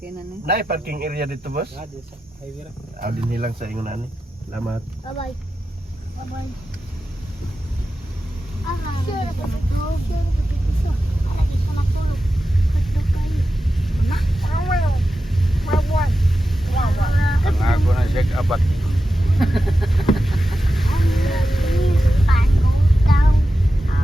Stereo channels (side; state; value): both; normal; correlation 0.91